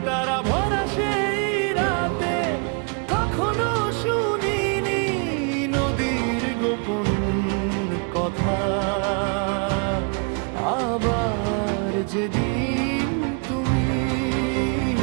তারা ভরা সেই রাতে, কখনো শুনিনি নদীর গোপন কথা। আবার যেদিন তুমি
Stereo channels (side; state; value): left; quieter; 37.4 dB